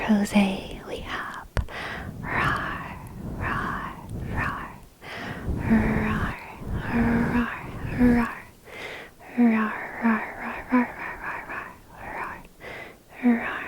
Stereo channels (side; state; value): both; identical; correlation 1.00